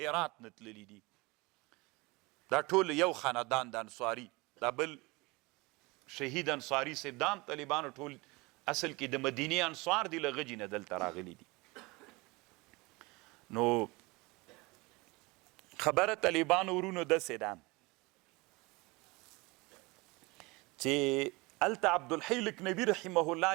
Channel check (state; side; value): quieter; left; 24.6 dB